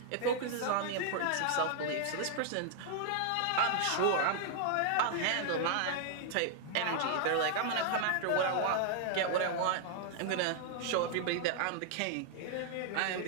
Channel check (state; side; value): different; both; correlation -0.01